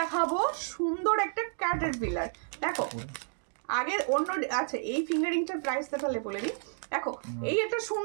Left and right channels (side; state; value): left; silent; 57 dB below the other